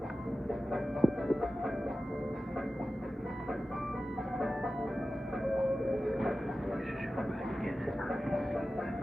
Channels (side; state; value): both; normal; correlation 0.94